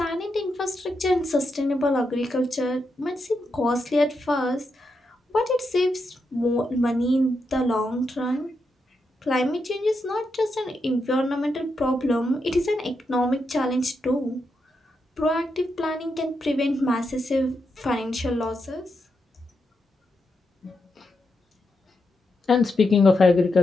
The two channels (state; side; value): normal; both; correlation 0.84